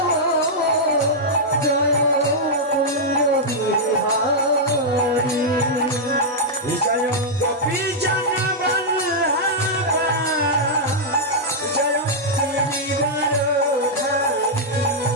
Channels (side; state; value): both; normal; correlation -0.06